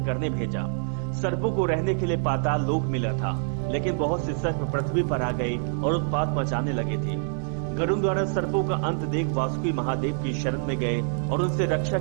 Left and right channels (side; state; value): left; silent; digital silence